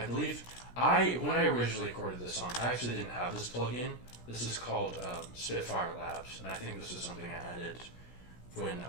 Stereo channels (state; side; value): late; right; 17 ms